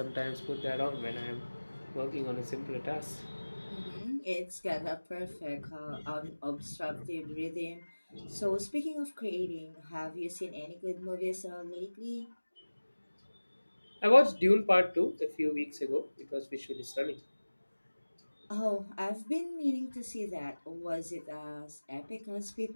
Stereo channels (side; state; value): both; inverted; correlation -1.00